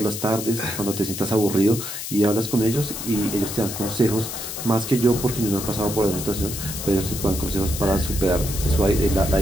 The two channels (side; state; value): left; noise; hiss, 7 dB below the sound